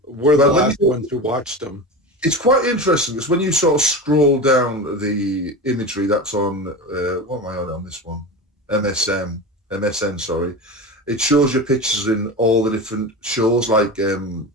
the last ones who watched them. It's quite interesting because when you sort of scroll down the imagery that's on, what am I on this one? MSN, sorry. It shows you pictures in all the different shows, like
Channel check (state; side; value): normal; both; correlation 0.27